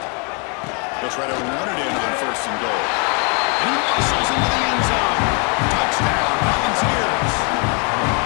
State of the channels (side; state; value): right; quieter; 35.5 dB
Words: They'll try to run it in on 1st and goal. And he muscles into the end zone. Touchdown, Volunteers.